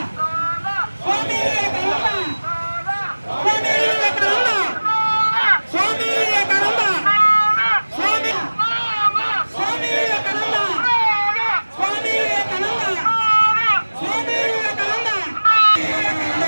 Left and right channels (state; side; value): inverted; both; correlation -1.00